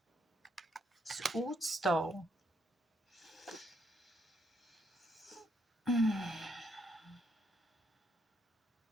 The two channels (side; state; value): both; normal; correlation 0.75